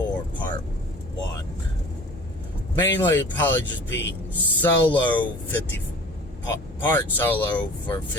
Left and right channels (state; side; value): normal; both; correlation 0.44